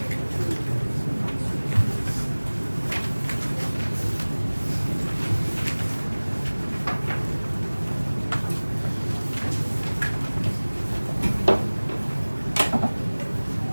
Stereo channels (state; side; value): inverted; both; correlation -1.00